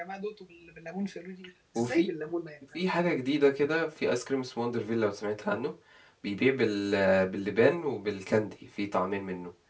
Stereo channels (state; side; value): identical; both; correlation 1.00